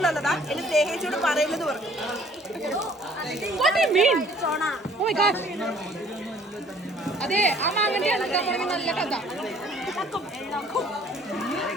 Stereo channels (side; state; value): both; normal; correlation 0.57